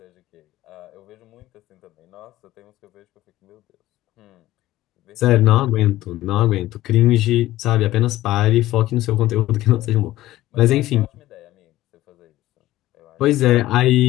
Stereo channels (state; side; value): quieter; right; 15.6 dB